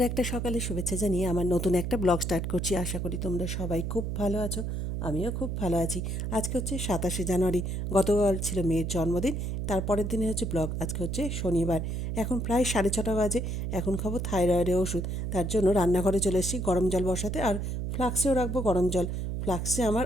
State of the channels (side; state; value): right; noise; hum, 2 dB below the sound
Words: একটা সকালে শুভেচ্ছা জানিয়ে আমার নতুন একটা ব্লগ স্টার্ট করছি। আশা করি তোমরা সবাই খুব ভালো আছো। আমিও খুব ভালো আছি। আজকে হচ্ছে 27শে জানুয়ারি। গতকাল ছিল মেয়ের জন্মদিন। তারপরের দিনে হচ্ছে ব্লগ। আজকে হচ্ছে শনিবার। এখন প্রায় 6:30 বাজে। এখন খাবো থাইরয়েডের ওষুধ। তার জন্য রান্নাঘরে চলে এসেছি গরম জল বসাতে, আর ফ্লাক্সেও রাখবো গরম জল। ফ্লাক্সে আমার